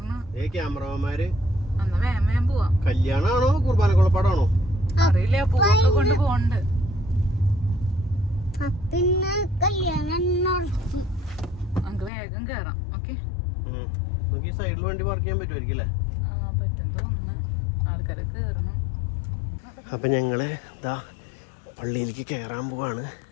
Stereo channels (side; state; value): right; drops out; at 12.1 s